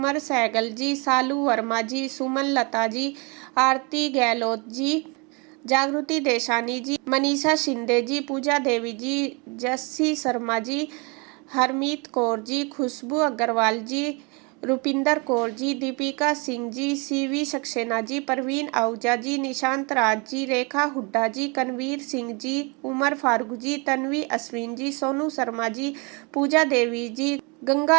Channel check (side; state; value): left; quieter; 30.5 dB